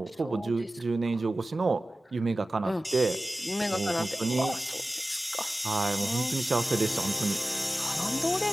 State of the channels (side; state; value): both; normal; correlation 0.96